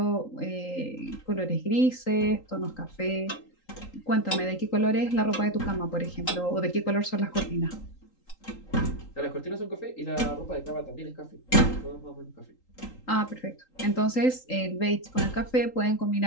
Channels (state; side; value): late; right; 3.8 ms